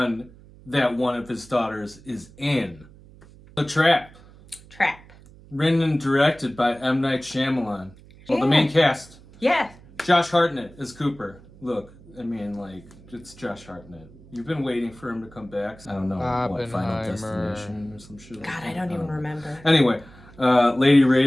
that one of his daughters is in. The Trap. Written and directed by M. Night Shyamalan. Well, the main cast. Yeah. Josh Hartnett is Cooper. Look, I mean, like, it's Josh Hartnett. You've been waiting for him to come back. I don't know, what, Final Destination or some shit. God, I don't even remember. Anyway, Lady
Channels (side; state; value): right; noise; hum, 23 dB below the sound